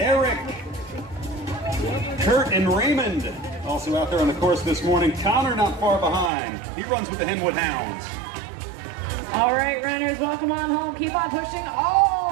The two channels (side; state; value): left; drops out; at 6.3 s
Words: Kurt, and Raymond. Also out there on the course this morning. Connor not far behind. He runs with the Henwood Hounds. All right, runners, welcome on home. Keep on pushing